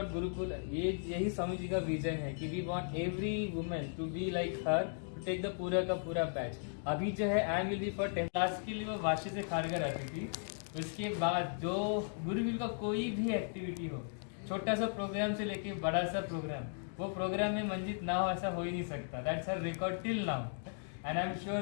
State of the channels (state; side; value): silent; right; digital silence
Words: गुरुकुल, यही स्वामी जी का विजन है कि we want every women to be like her, to take the पूरा का पूरा बैच। अभी जो है I will be for 10 class के लिए वो वाशी से खारगर आती थी। उसके बाद जो गुरुकुल का कोई भी एक्टिविटी हो, छोटा सा प्रोग्राम से लेके बड़ा सा प्रोग्राम, वो प्रोग्राम में मंजित ना हो ऐसा हो ही नहीं सकता। That's her record till now and I am